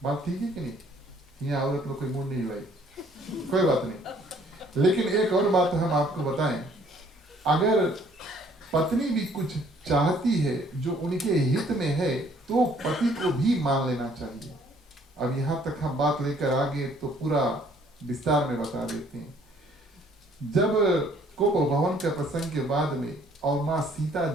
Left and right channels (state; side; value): normal; both; correlation 0.61